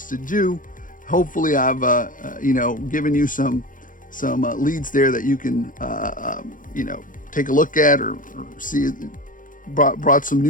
you. Hopefully, I've given you some leads there that you can take a look at or see. Brought some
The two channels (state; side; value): late; right; 0.39 ms